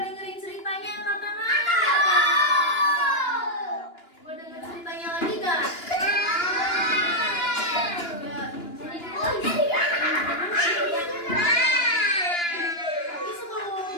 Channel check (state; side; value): late; right; 2.9 ms